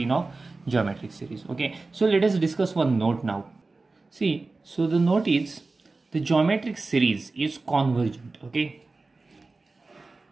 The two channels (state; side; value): quieter; left; 3.6 dB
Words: of geometric series. Okay, so let us discuss one note now. See, so the note is the geometric series is convergent. Okay,